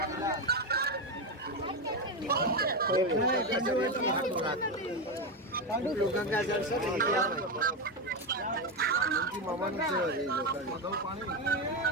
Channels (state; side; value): normal; both; correlation 0.11